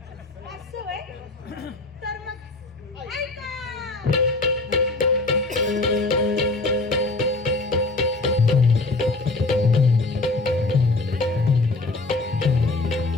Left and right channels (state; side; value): quieter; right; 3.2 dB